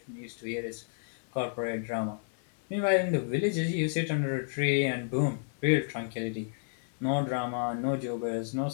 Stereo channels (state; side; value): silent; right; 57 dB below the other